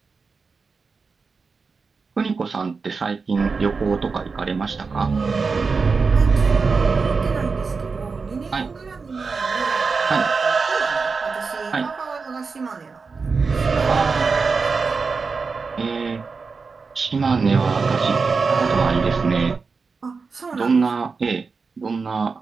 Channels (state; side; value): quieter; left; 4.7 dB